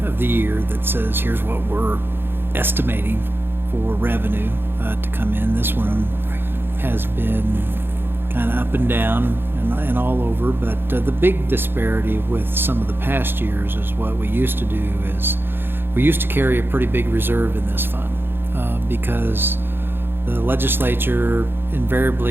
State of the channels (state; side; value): late; left; 0.10 ms